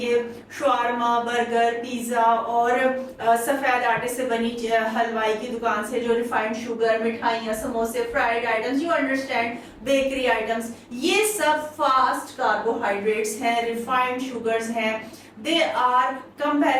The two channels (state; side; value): identical; both; correlation 1.00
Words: شاورما, برگر, پیزا اور سفید آٹے سے بنی حلوائی کی دکان سے جو ریفائنڈ شوگر, مٹھائیاں, سموسے, fried items, you understand, bakery items, یہ سب فاسٹ کاربوہائیڈریٹس ہیں, ریفائنڈ شوگرز ہیں. They are